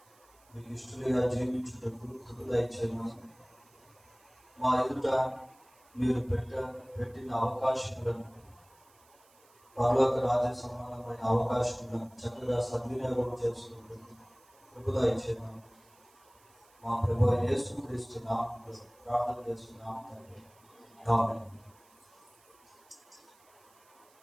మీకు ఇష్టలుగా జీవించుటకు కృప దయచేయమని, మా ఎదుట మీరు పెట్టిన అవకాశములను, పరలోక రాజ్య సమానమైన అవకాశములను చక్కగా సద్వినియోగం చేసుకుంటూ కృప దయచేయమని మా ప్రభువైన యేసుక్రీస్తు నామములో ప్రార్థన చేస్తున్నాం తండ్రి. ఆమేన్.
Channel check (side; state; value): right; noise; hiss, 30 dB below the sound